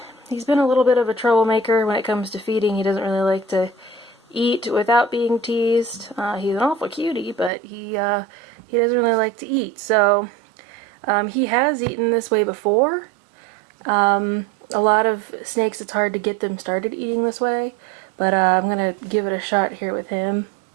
been a little bit of a troublemaker when it comes to feeding. He doesn't really like to eat without being teased. He's an awful cutie, but he doesn't really like to eat. So he has eaten this way before. A lot of snakes, it's hard to get them started eating this way. But I'm going to give it a shot here with him.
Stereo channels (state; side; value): drops out; left; at 7.5 s